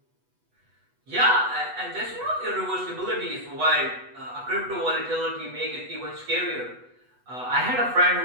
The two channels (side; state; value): left; late; 8.1 ms